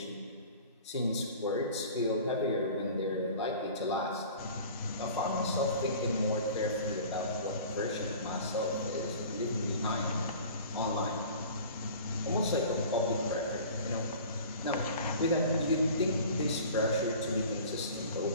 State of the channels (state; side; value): inverted; both; correlation -0.42